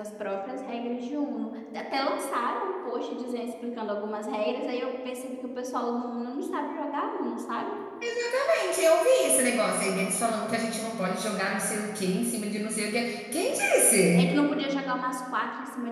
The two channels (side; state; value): both; identical; correlation 1.00